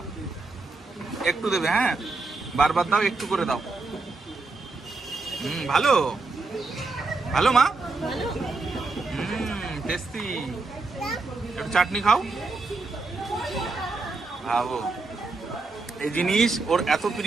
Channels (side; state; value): left; quieter; 3.7 dB